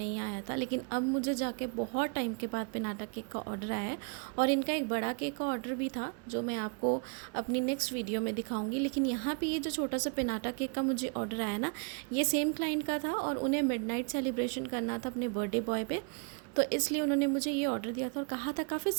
आया था। लेकिन अब मुझे जाके बहुत टाइम के बाद पिनाटा केक का ऑर्डर आया है। और इनका एक बड़ा केक का ऑर्डर भी था जो मैं आपको अपनी नेक्स्ट वीडियो में दिखाऊंगी। लेकिन यहाँ पे ये जो छोटा सा पिनाटा केक का मुझे ऑर्डर आया ना, ये सेम क्लाइंट का था और उन्हें मिडनाइट सेलिब्रेशन करना था अपने बर्थडे बॉय पे। तो इसलिए उन्होंने मुझे ये ऑर्डर दिया था और कहा था काफ़ी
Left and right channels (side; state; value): left; quieter; 37.5 dB